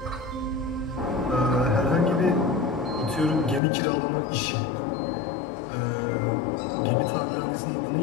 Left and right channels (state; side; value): drops out; right; at 3.6 s